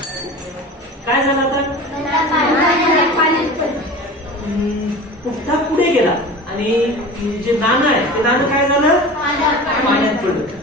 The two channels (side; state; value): both; normal; correlation 0.35